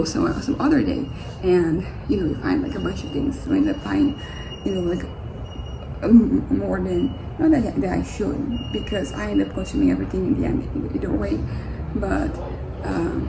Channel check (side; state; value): both; identical; correlation 1.00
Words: some other day and you find like a bunch of things. So I end up buying like more than not that I should, because I end up consuming everything in the end either way. But